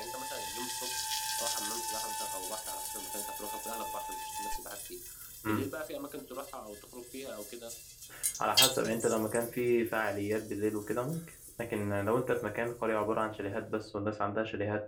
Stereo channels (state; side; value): identical; both; correlation 1.00